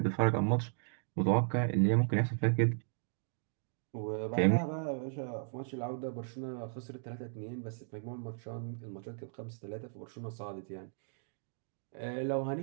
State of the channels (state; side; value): silent; left; digital silence